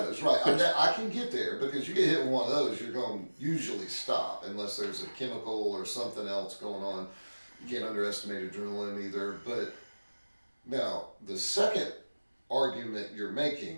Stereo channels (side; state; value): both; inverted; correlation -1.00